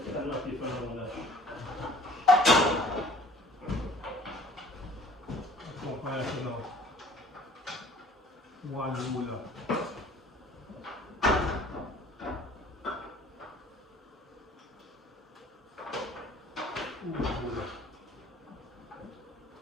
I'm not different from that. Compare to now. One ruler.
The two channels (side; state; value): both; normal; correlation 0.52